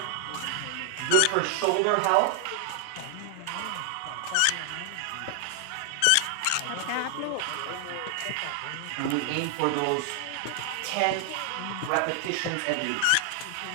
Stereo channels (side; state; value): both; different; correlation 0.00